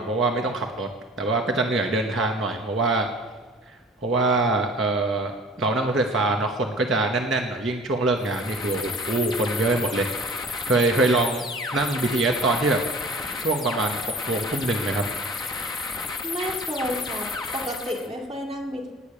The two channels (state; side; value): normal; both; correlation 0.45